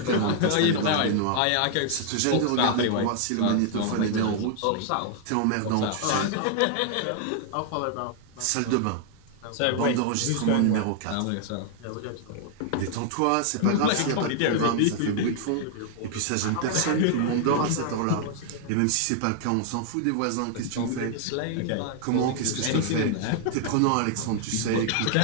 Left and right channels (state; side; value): different; both; correlation 0.00